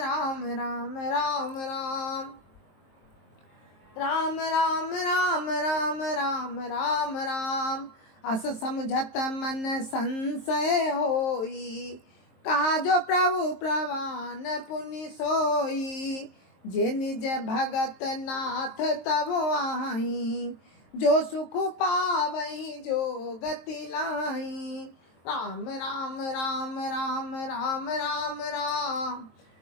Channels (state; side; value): late; right; 23 ms